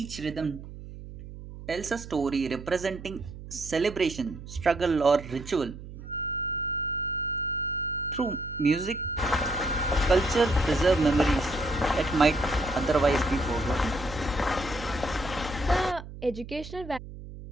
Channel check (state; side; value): noise; right; hum, 13 dB below the sound